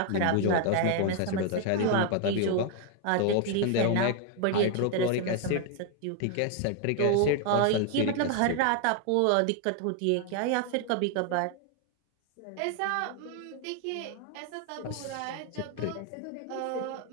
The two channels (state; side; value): different; both; correlation 0.01